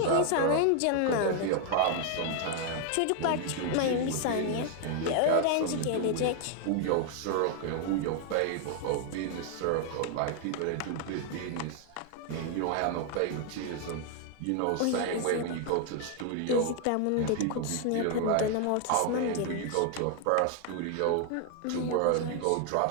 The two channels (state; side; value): different; both; correlation 0.00